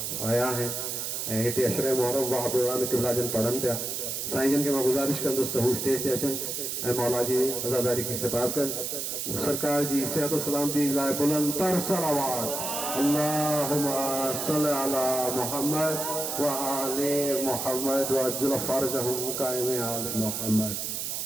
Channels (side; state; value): right; noise; hiss, 3 dB below the sound